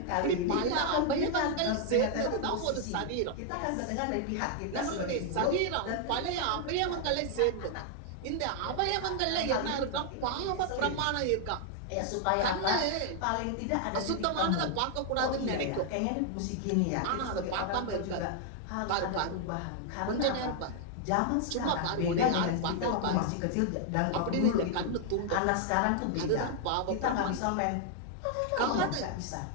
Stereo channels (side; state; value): both; different; correlation 0.00